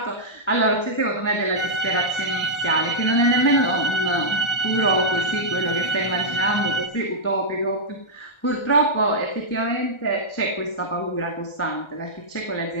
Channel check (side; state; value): right; late; 1.3 ms